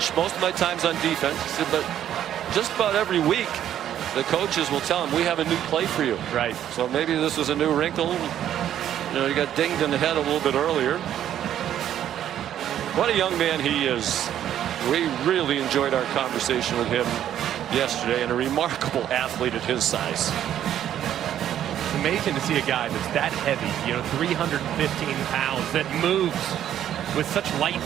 Most of my time's on defense. He said, but just about every week, the coaches will tell him, we have a new play for you. Right. So maybe this is a new wrinkle. You got dinged in the head a little bit earlier. What a young man he is. We really enjoyed our conversation with him yesterday, and a remarkable athlete at his size. It's amazing to see a guy that's that heavy, 315 pounds, that moves with such light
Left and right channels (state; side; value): quieter; left; 10.8 dB